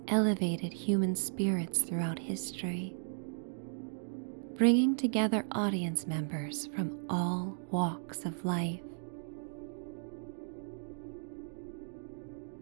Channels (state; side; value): silent; left; digital silence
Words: elevated human spirits throughout history, bringing together audience members from all walks of life.